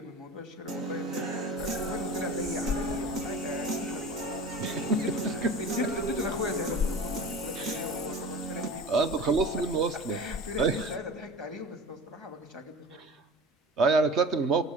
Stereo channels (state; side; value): normal; both; correlation 0.36